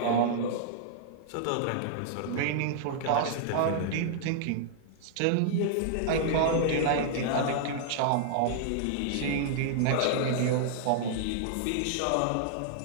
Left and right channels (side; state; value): both; different; correlation -0.01